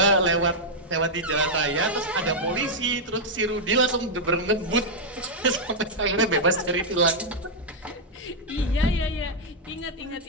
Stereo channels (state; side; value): normal; both; correlation -0.04